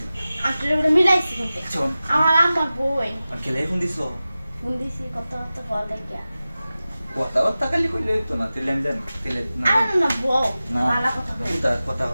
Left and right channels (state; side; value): inverted; both; correlation -0.95